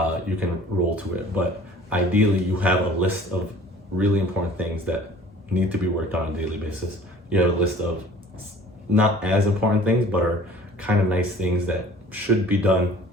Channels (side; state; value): both; normal; correlation 0.49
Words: you can roll to it. But ideally, you have a list of really important things that need to be worked on a daily basis. You have a list of not as important things, but are kind of nice things that should be done,